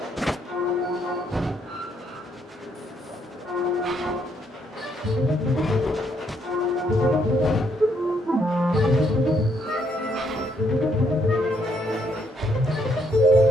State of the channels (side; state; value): both; normal; correlation 0.72